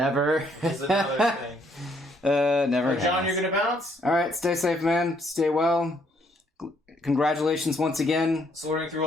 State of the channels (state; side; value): normal; both; correlation 0.69